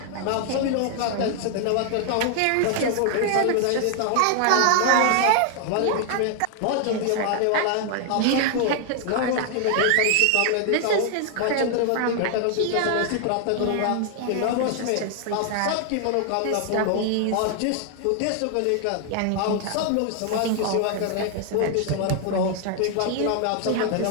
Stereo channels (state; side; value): different; both; correlation 0.00